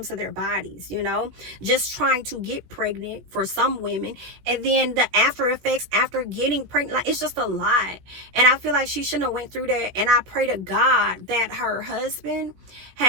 to their bodies, you know, just trying to get pregnant for some women, and then the after effects after getting pregnant, like, it's just a lot. And I feel like she shouldn't have went through that. And I pray to God that her husband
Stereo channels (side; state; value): left; late; 17 ms